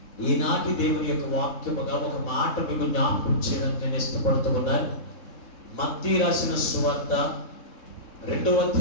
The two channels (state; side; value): late; right; 3.6 ms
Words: ఈనాటి దేవుని యొక్క వాక్యముగా ఒక మాట మీకు జ్ఞాపకం చేయడానికి నేను ఇష్టపడుతూ ఉన్నాను. మత్తయి రాసిన సువార్త 2వ